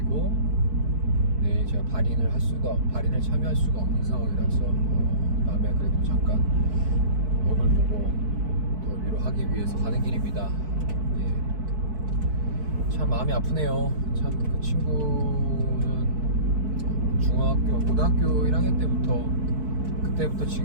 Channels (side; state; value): left; late; 4.6 ms